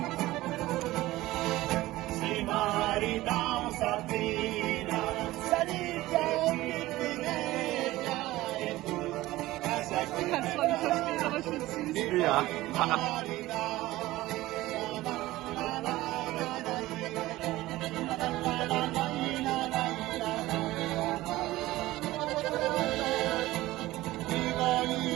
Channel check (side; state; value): left; quieter; 17.4 dB